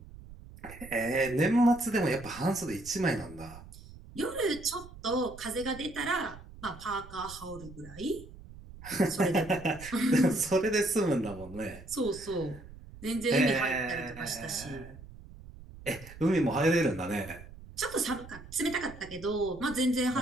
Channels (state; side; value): noise; right; rumble, 17 dB below the sound